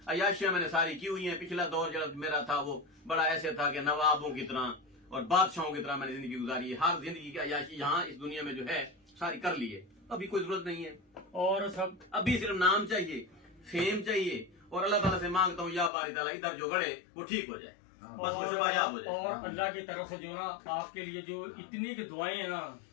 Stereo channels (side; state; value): right; drops out; at 15.9 s